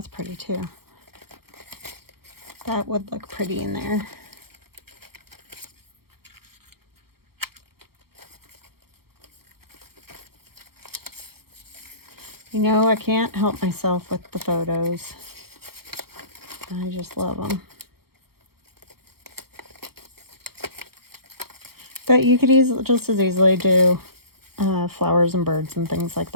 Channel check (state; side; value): late; left; 0.95 ms